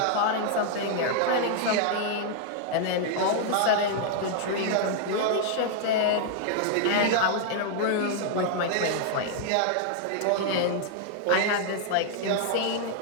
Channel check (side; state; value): both; different; correlation -0.01